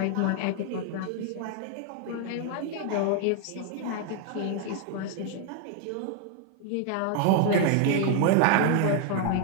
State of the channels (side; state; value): both; different; correlation 0.00